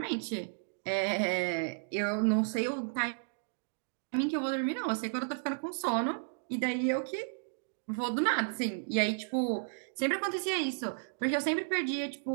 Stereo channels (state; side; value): silent; left; digital silence